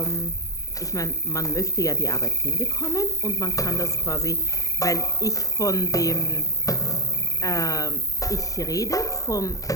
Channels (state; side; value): late; right; 0.16 ms